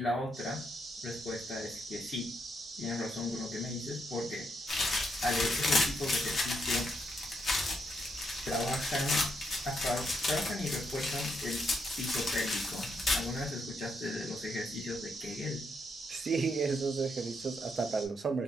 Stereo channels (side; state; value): both; normal; correlation 0.78